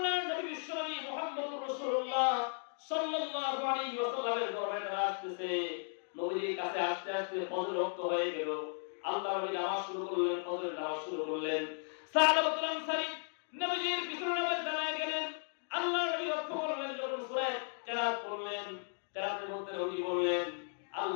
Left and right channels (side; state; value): right; silent; 54 dB below the other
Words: নবী বিশ্বনবী মুহাম্মদুর রাসূলুল্লাহ সাল্লাল্লাহু আলাইহি ওয়াসাল্লামের দরবারে তারা আসতেছে। নবীর কাছে আসতে আসতে ফজর ওয়াক্ত হয়ে গেল। আল্লাহর নবী নামাজ শুরু করলেন, ফজরের নামাজ শুরু করলেন। সাহাবাতুল আনসারী নবীর পিছনে নামাজ দাঁড়ায় গেলেন। আল্লাহর নবী লক্ষ্য করলেন, যখন সূরা কেরাত পড়লেন, কেরাতের মধ্যে নবী বললেন,